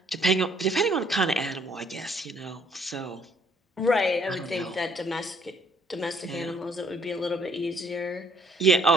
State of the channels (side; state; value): both; normal; correlation 0.64